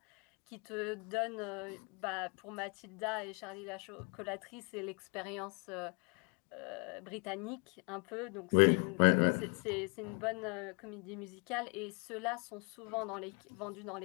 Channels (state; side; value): quieter; right; 35.2 dB